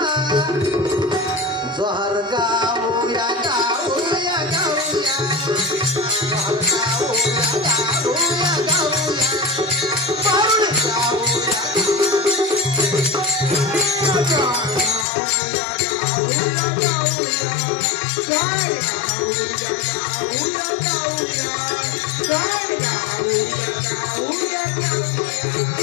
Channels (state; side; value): drops out; right; at 15.1 s